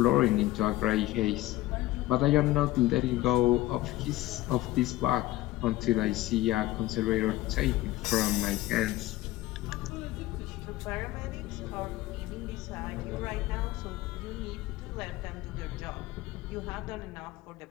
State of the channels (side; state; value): right; quieter; 16.9 dB